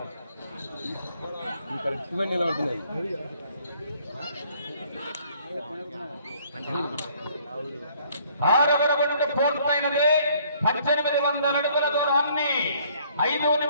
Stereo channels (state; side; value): inverted; both; correlation -0.61